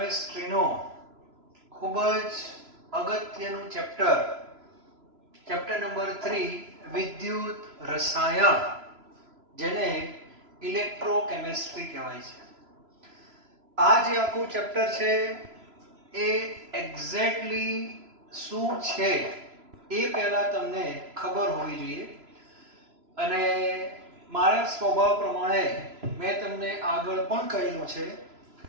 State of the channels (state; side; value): late; left; 3.0 ms